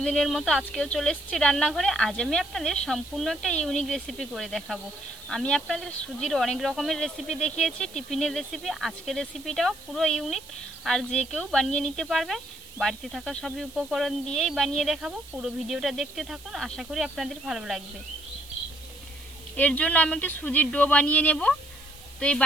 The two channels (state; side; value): noise; right; hiss, 20 dB below the sound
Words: মতো আজকেও চলে এসেছি রান্নাঘরে। আজ আমি আপনাদের সম্পূর্ণ একটা ইউনিক রেসিপি করে দেখাবো। আমি আপনাদের সুজির অনেক রকমের রেসিপি দেখিয়েছি, টিফিনের রেসিপি। আজকের রেসিপিটাও পুরো ইউনিক, আর যে কেউ বানিয়ে নিতে পারবে। বাড়িতে থাকা সবই উপকরণ দিয়েই বানিয়ে দেখাবো। পুরো ভিডিওটা দেখতে থাকুন, আশা করি আপনাদের ভালো লাগবে। এর জন্য আমি একটা সুজির ডো বানিয়ে নেব। তো এই